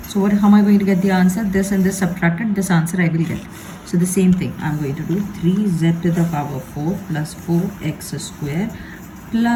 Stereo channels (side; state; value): both; identical; correlation 1.00